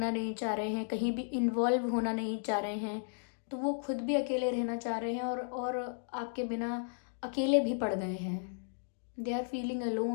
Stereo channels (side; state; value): right; silent; digital silence